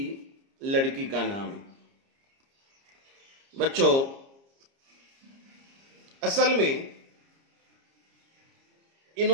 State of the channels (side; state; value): left; late; 30 ms